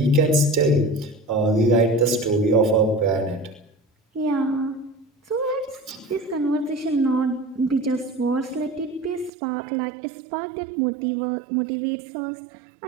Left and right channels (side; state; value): left; drops out; at 9.3 s